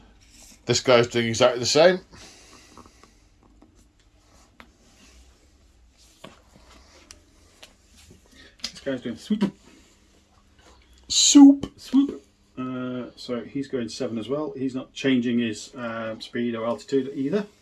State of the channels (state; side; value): identical; both; correlation 1.00